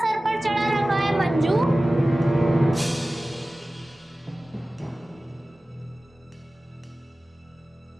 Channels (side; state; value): both; normal; correlation 0.97